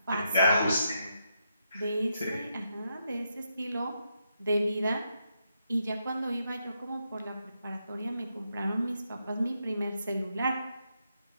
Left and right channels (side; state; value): both; inverted; correlation -0.81